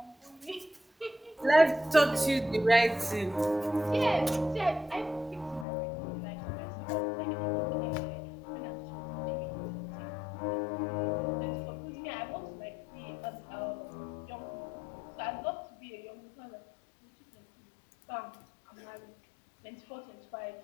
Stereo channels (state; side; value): drops out; right; at 5.7 s